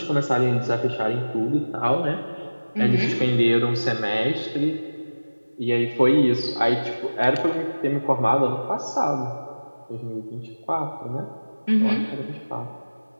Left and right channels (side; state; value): both; inverted; correlation -1.00